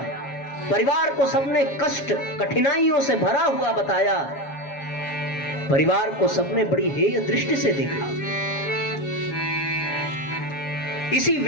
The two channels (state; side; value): late; right; 7.3 ms